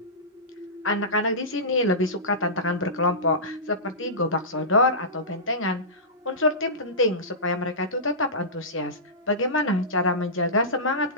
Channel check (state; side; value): normal; both; correlation -0.19